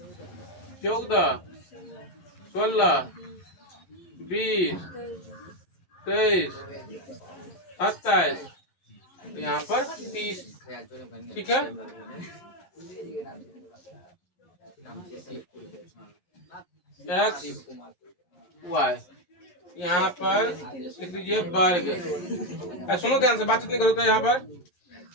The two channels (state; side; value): late; right; 11 ms